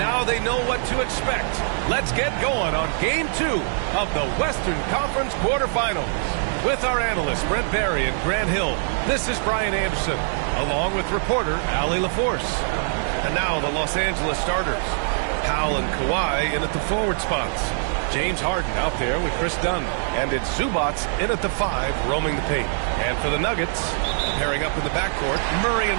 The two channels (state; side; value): silent; left; 63 dB below the other